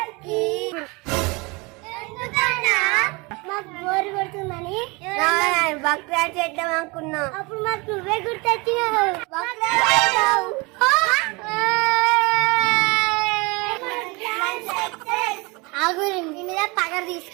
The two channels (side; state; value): left; quieter; 26.9 dB